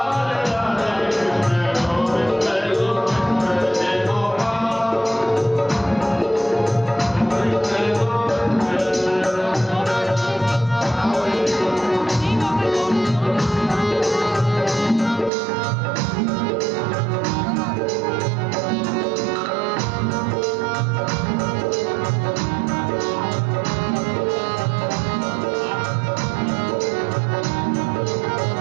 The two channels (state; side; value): drops out; left; at 15.3 s